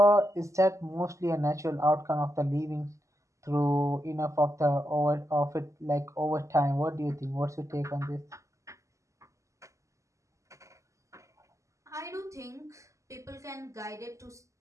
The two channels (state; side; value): late; left; 0.15 ms